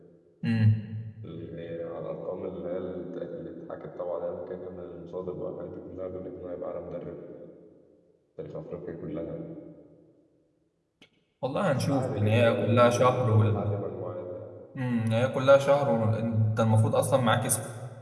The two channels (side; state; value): both; identical; correlation 1.00